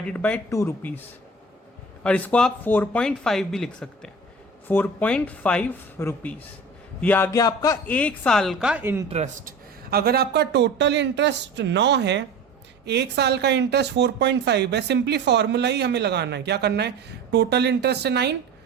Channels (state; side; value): quieter; left; 3.0 dB